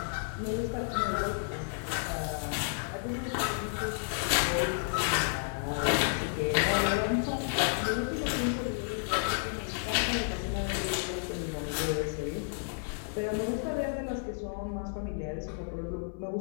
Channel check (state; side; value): silent; right; 57 dB below the other